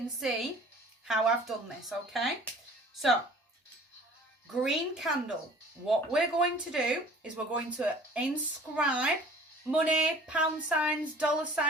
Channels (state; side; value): normal; both; correlation 0.49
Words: see how I've done this, okay? So, green candle. What we're going to do is we're going to inscribe money, pound signs, dollar